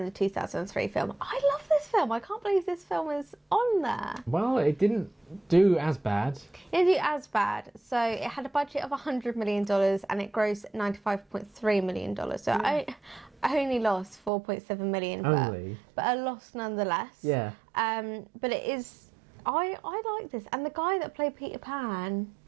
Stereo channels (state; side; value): drops out; left; at 14.3 s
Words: the 2003 film. I love this film. I can't believe this film is on there. Well, it didn't do as bad. It didn't do as bad. So it had a budget of $100 million and it grossed $95.3 million. So I only lost $4.7 million. But a loss nonetheless. Yeah. But it is... I like this. And the guy that played Peter Pan...